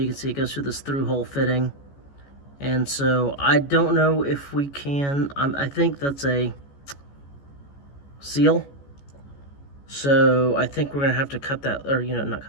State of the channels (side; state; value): right; late; 14 ms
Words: can see it goes through this through hole fitting. And so I don't know if we can, I think that's a seal. So I think we're gonna have to cut that, or not